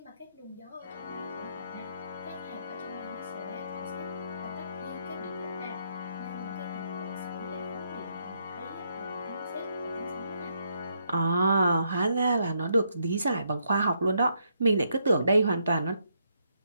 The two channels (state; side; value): inverted; both; correlation -0.76